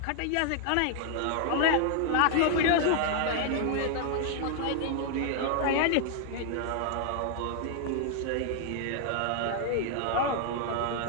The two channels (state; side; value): different; both; correlation 0.00